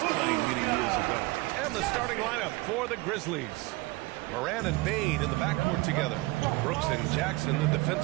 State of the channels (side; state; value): left; quieter; 22.4 dB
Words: playing many years ago. And the starting lineup for the Grizzlies. Moran and Bane in the backcourt together. Brooks and Jackson, the